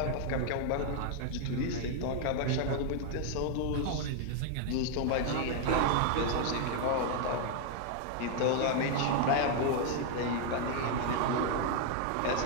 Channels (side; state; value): both; different; correlation 0.00